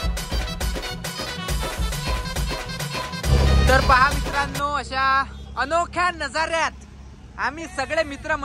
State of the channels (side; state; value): both; identical; correlation 1.00